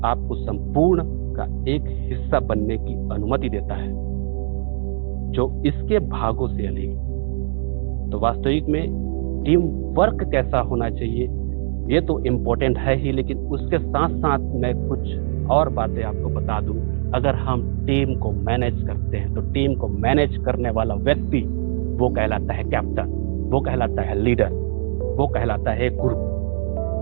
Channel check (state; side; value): silent; left; digital silence